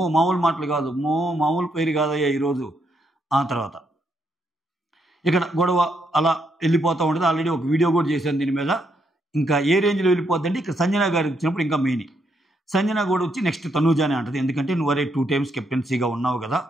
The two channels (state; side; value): normal; both; correlation 0.77